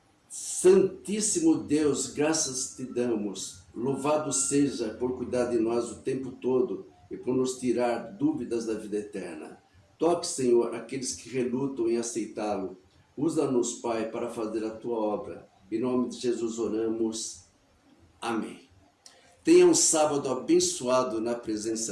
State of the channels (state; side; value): identical; both; correlation 1.00